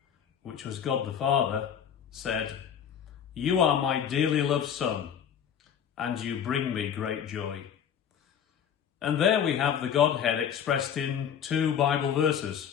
which was God the Father, said, "You are my dearly loved Son, and you bring me great joy." And there we have the Godhead expressed in two Bible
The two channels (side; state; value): right; quieter; 8.4 dB